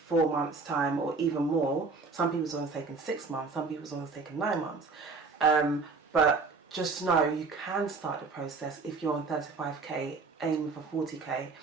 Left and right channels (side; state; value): left; quieter; 4.2 dB